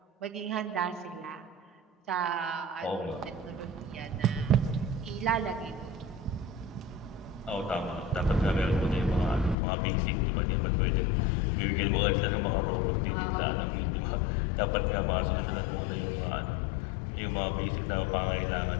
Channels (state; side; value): drops out; right; at 9.6 s